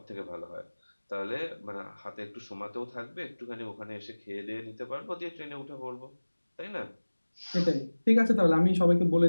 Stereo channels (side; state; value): both; inverted; correlation -1.00